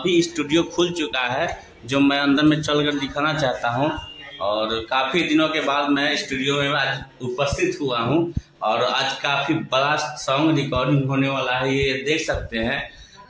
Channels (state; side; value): identical; both; correlation 1.00